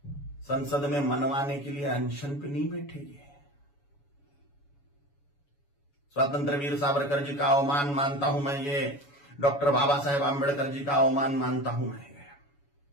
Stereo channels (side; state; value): right; late; 7.1 ms